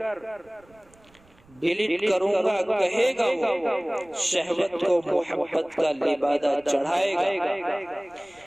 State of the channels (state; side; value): noise; right; rumble, 30 dB below the sound